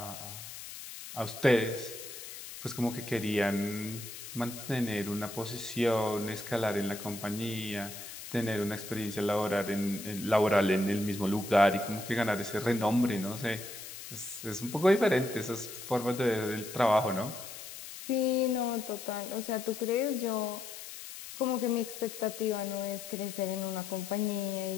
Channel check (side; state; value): left; noise; hiss, 11 dB below the sound